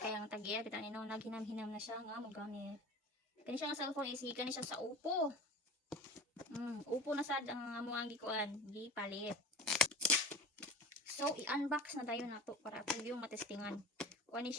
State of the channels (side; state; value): both; normal; correlation 0.35